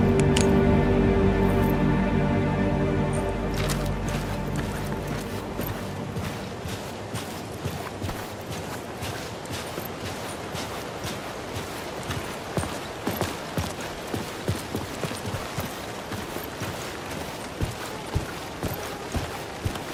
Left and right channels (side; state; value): both; identical; correlation 1.00